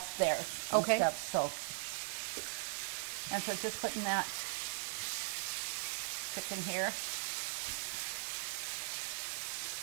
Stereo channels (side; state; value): left; silent; digital silence